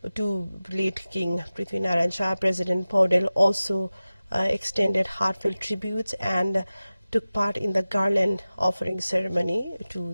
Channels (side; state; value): both; inverted; correlation -0.96